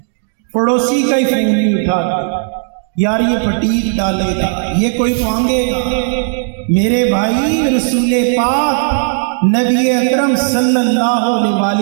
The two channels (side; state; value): left; silent; digital silence